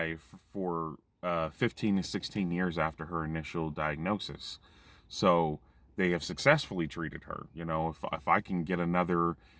for 15 to 16 years after her initial diagnosis. So they have successfully treated her. If I can get another,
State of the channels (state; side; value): identical; both; correlation 1.00